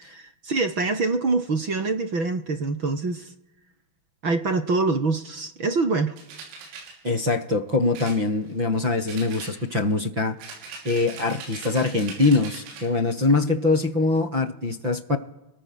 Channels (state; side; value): late; left; 5.9 ms